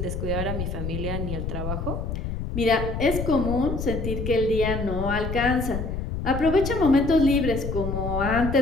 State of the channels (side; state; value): left; noise; rumble, 4 dB below the sound